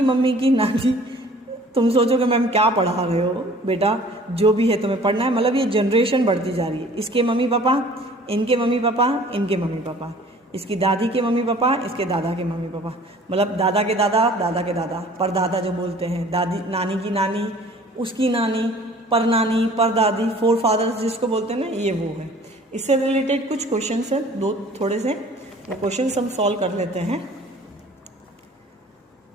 मम्मी की नानी. तुम सोचोगे मैम क्या पढ़ा रहे हो बेटा, जो भी है तुम्हें पढ़ना है. मतलब ये जनरेशन बढ़ती जा रही है. इसके मम्मी पापा, इनके मम्मी पापा, इनके मम्मी पापा, इसकी दादी के मम्मी पापा, इसके दादा के मम्मी पापा, मतलब दादा के दादा, दादा के दादा, परदादा जो बोलते हैं, दादी नानी की नानी, उसकी नानी, परनानी, परदादी, फोर फादर्स जिसको बोलते हैं ना, ये वो है. इससे रिलेटेड कुछ क्वेश्चन है, दो थोड़े से, वो क्वेश्चन हम सॉल्व कर लेते हैं.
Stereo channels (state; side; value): normal; both; correlation 0.50